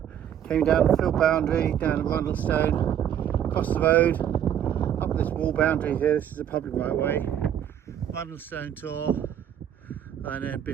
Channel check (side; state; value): left; quieter; 9.9 dB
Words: came down the field boundary, down to Rundlestone, across the road, up this wall boundary here. This is a public right of way. Rundlestone Tor, and then